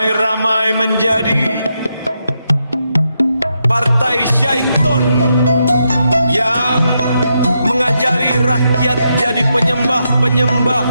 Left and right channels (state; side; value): inverted; both; correlation -0.82